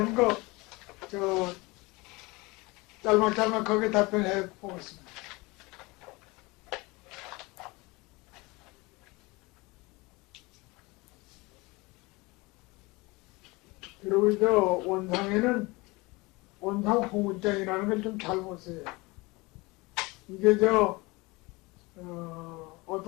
거 저 짤막짤막하게 답변해 보겠습니다. 그리고 저 원상에는 원상 홍문장이라는 걸 좀 잘 보세요. 이게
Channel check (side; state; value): right; quieter; 24.1 dB